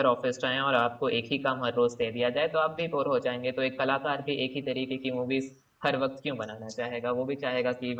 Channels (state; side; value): identical; both; correlation 1.00